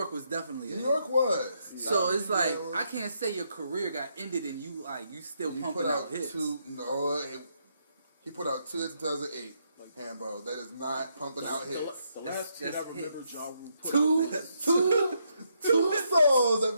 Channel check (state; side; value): inverted; both; correlation -0.77